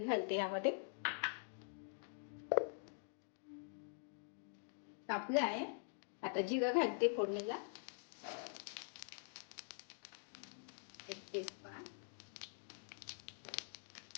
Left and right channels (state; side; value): silent; right; digital silence